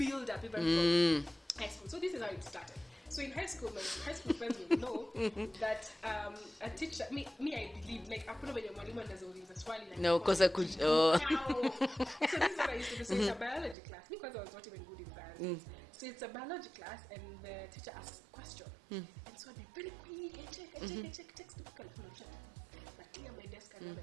up even from high school. So this is how it started. So in high school, my high school friends will know that a teacher, me I believe, like hakuna venye mwalimu anazauliza swali like no, because I could. Oh. So this is what I used to do. So it's a biology class. Because I was not even good in science. So it's a biology class, and the teacher asks a question, and so I'd be very quick. I check textbook, I clear my desk and I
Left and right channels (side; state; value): left; drops out; at 13.8 s